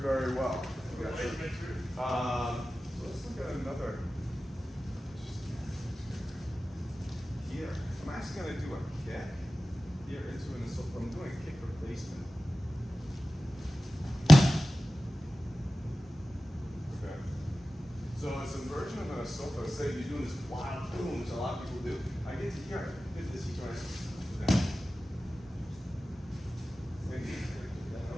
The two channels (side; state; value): both; normal; correlation 0.95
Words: well. So let's look at another. Here. I'm actually going to do a kick here into an assault. I'm doing a kick replacement. Okay. So it's a version of an assault. Say you're doing this wild boom, which a lot of people do. I get to here. Hit this. You try.